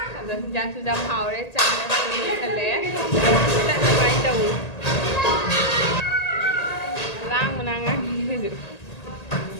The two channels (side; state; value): right; late; 1.8 ms